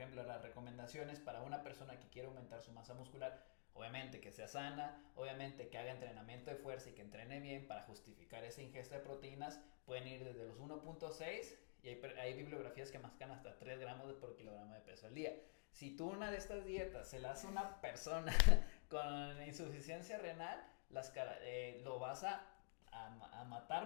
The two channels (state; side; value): silent; right; digital silence